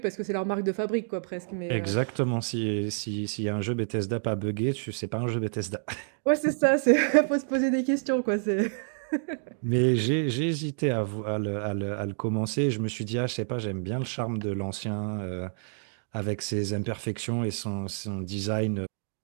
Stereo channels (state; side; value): silent; left; digital silence